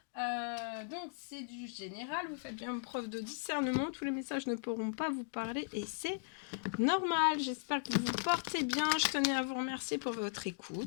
Donc, c'est du général. Vous faites bien preuve de discernement. Tous les messages ne pourront pas vous parler et c'est normal. J'espère que vous vous portez bien. Je tenais à vous remercier pour votre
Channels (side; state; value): right; silent; digital silence